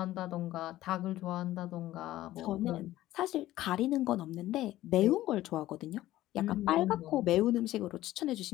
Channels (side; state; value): right; quieter; 15.2 dB